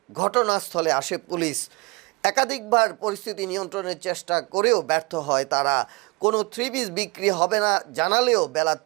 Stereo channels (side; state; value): left; quieter; 28.6 dB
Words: ঘটনাস্থলে আসে পুলিশ। একাধিকবার পরিস্থিতি নিয়ন্ত্রণের চেষ্টা করেও ব্যর্থ হয় তারা। কোনো 3 পিস বিক্রি হবে না জানালেও বেলা